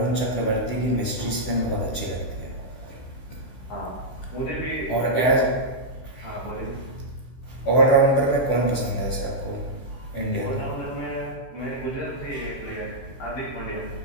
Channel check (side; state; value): right; late; 16 ms